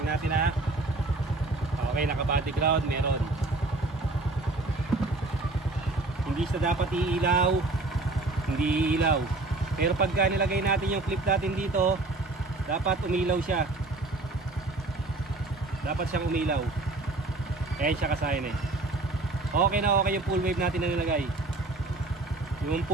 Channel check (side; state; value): left; quieter; 3.1 dB